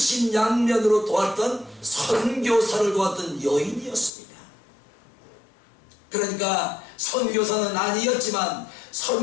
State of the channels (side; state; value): right; drops out; at 4.1 s